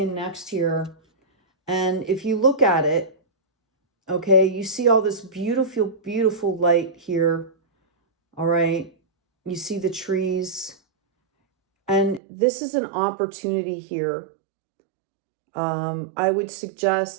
next here. And if you look at it, okay, you see all this beautiful, beautiful light here. All right. You see the trees. And this is an opportunity here. I would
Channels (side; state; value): left; drops out; at 12.2 s